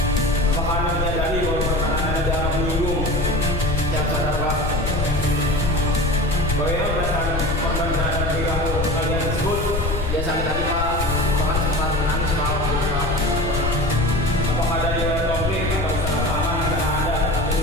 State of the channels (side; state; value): left; noise; rumble, 2 dB below the sound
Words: Apakah Anda menyadari bahwa perkataan Anda dianggap menyinggung? Siap sadar Pak. Bagaimana perasaan korban terhadap perilaku kalian tersebut? Dia sakit hati Pak, bahkan sempat menangis Pak waktu itu Pak. Apakah ada riwayat konflik atau kesalahpahaman antara Anda